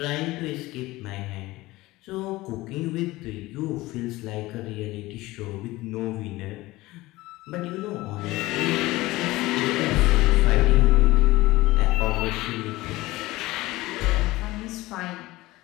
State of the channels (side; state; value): right; quieter; 19.1 dB